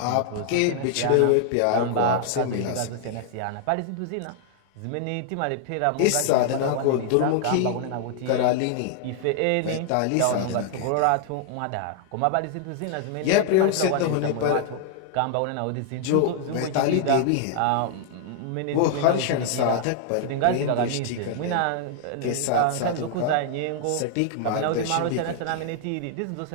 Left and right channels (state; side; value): different; both; correlation 0.00